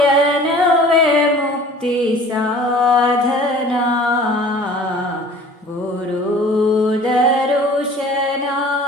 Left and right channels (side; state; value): both; normal; correlation 0.47